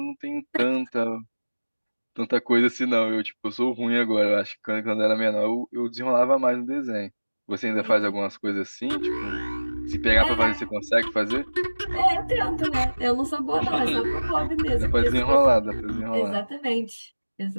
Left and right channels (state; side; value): inverted; both; correlation -1.00